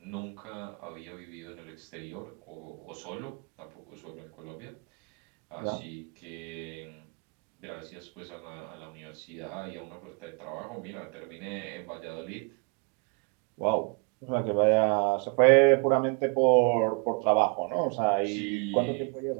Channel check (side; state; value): left; quieter; 35.1 dB